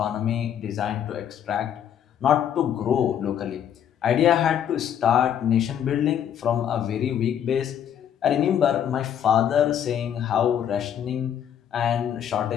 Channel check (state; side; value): quieter; right; 9.4 dB